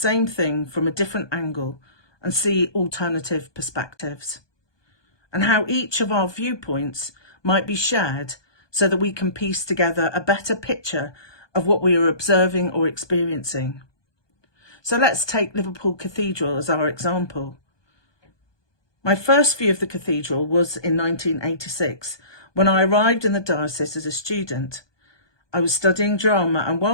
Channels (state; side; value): late; right; 1.2 ms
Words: thing from a different angle and see alternative perspectives, and how each of our viewpoints might be shared so that we can piece together a better picture of what we are observing or experiencing. So let's take Liverpool Cathedral as our example. My first view of the cathedral was in 1986 when I arrived in the diocese as a student. I was studying drama, and